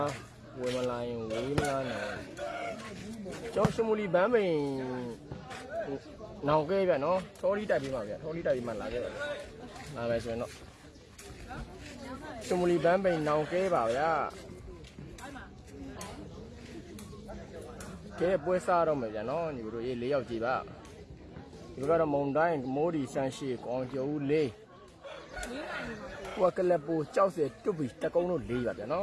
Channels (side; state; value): both; identical; correlation 1.00